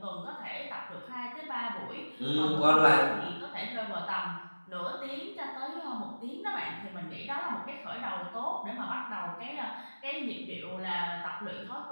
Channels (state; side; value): inverted; both; correlation -1.00